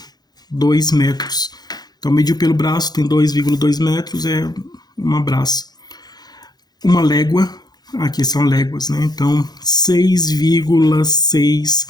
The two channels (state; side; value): late; right; 0.19 ms